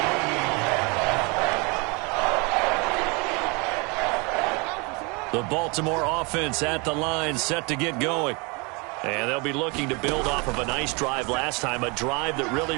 The Baltimore offense at the line set to get going. And they'll be looking to build off of a nice drive last time, a drive that really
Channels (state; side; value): quieter; left; 29.7 dB